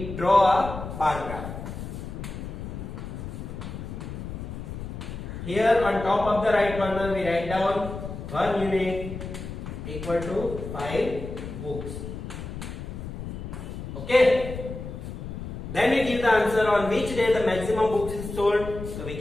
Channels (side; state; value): left; noise; rumble, 8 dB below the sound